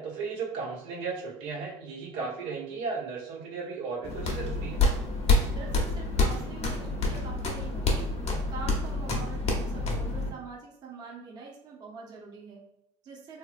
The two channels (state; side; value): normal; both; correlation 0.39